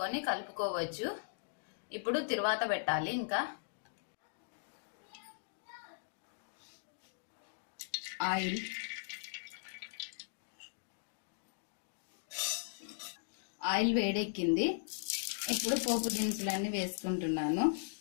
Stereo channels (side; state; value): right; silent; digital silence